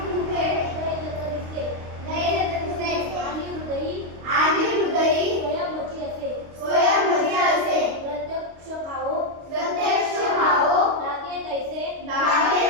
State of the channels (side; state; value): left; late; 25 ms